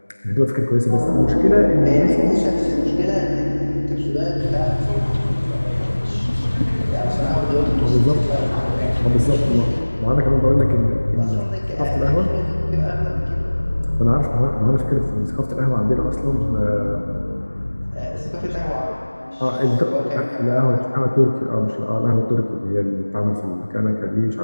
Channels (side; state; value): both; inverted; correlation -1.00